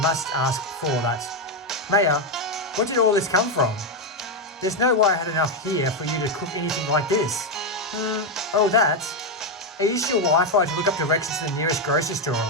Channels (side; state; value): both; normal; correlation 0.05